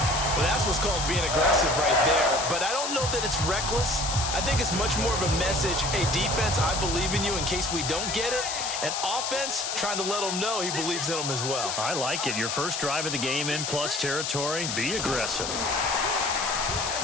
Well, that's what's called being aggressive right there. But I don't know that it's reckless. I think it's much more of a message. Hey, defense, I believe in you in case we don't get it. And offense, trying to let him know he believes in him as well. I like it. Your first drive of the game in plus territory. Be aggressive.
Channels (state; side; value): noise; left; hiss, 3 dB below the sound